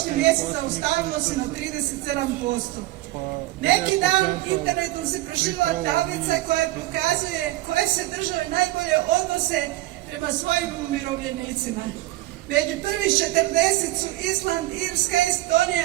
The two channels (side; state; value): left; quieter; 17.2 dB